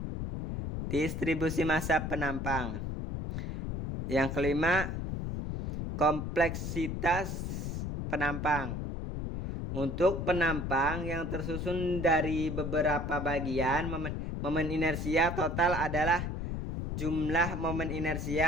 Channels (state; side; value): noise; left; rumble, 3 dB below the sound